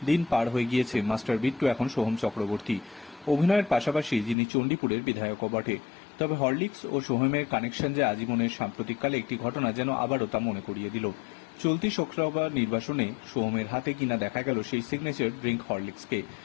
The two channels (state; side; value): drops out; right; at 4.4 s